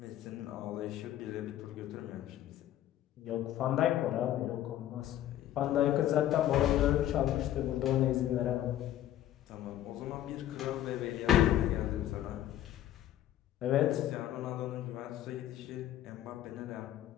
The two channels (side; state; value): right; quieter; 12.4 dB